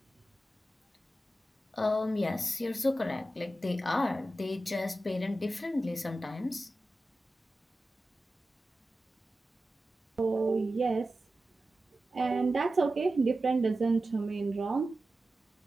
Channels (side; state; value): both; normal; correlation 0.93